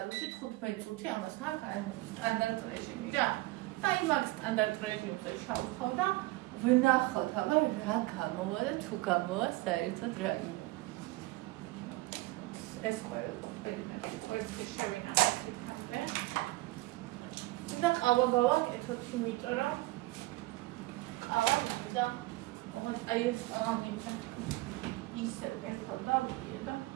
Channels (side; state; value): left; quieter; 19.7 dB